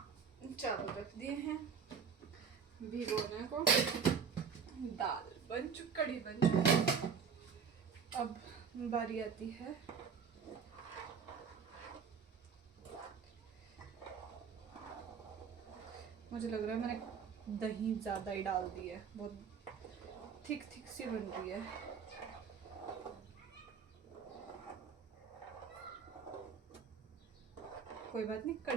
चावल रख दिए हैं भिगोने को। दाल बन चुकी, कढ़ी बन चुकी। अब बारी आती है मुझे लग रहा है मैंने दही ज़्यादा ही डाल दी है, बहुत थिक थिक सी बन रही है। कोई बात नहीं,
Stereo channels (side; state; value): left; quieter; 6.4 dB